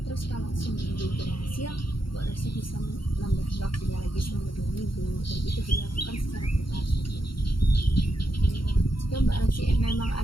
Terus kalau seminggu berhasil, Mbak Rosi bisa menambah waktunya lagi selama 2 minggu, dan itu dilakukan secara bertahap saja. Jika Mbak Rosi memang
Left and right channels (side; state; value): right; late; 0.73 ms